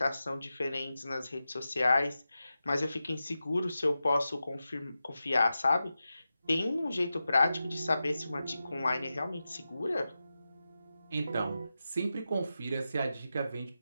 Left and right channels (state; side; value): inverted; both; correlation -0.92